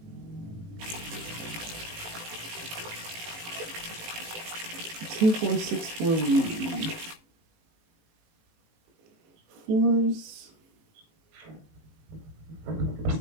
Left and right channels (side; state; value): left; late; 18 ms